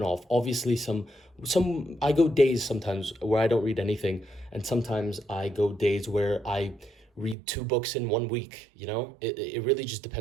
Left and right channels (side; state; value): left; drops out; at 7.4 s